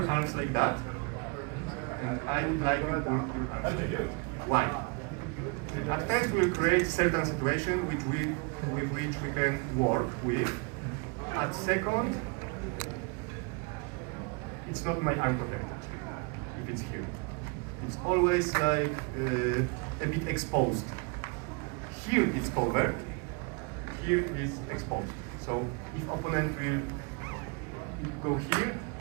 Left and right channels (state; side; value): quieter; left; 32.1 dB